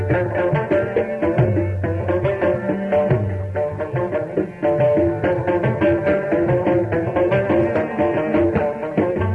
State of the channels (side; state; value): both; identical; correlation 1.00